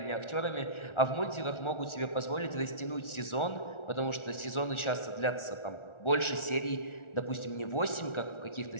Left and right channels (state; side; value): late; right; 1.4 ms